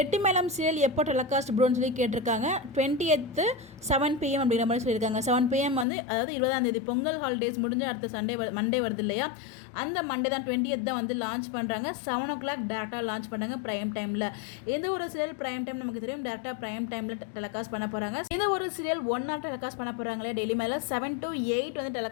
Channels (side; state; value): right; drops out; at 5.9 s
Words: சீரியல் எப்போ டெலிகாஸ்ட் ப்ரோன்னு சொல்லி கேட்டிருக்காங்க. 20th 7 PM அப்படிங்கிற மாதிரி சொல்லியிருக்காங்க. 7 PM வந்து அதாவது 20ஆம் தேதி பொங்கல் ஹாலிடேஸ் முடிஞ்சு அடுத்த மண்டே வருது இல்லையா, அந்த மண்டே தான் 20th தான் வந்து லான்ச் பண்ணுறாங்க. 7 o'clock டேரெக்டாக லான்ச் பண்ணுறாங்க ப்ரைம் டைமில். எந்த ஒரு சீரியல் ப்ரைம் டைம் நமக்கு தெரியும், டேரெக்டாக ப்ரைம் டைமில் டெலிகாஸ்ட் பண்ண போகிறாங்க. இந்த ஒரு சீரியல் 1 hour டெலிகாஸ்ட் பண்ண போகிறாங்களே டெய்லி மேலே 7 to 8 வந்து